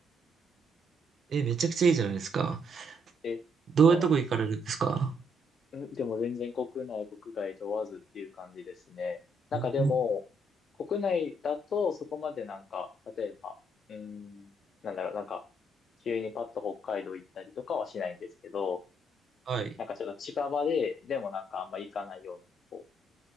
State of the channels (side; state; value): both; normal; correlation 0.72